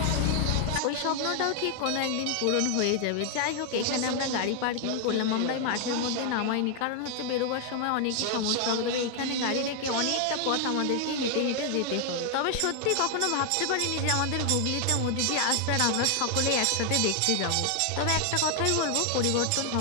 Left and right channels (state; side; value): different; both; correlation 0.00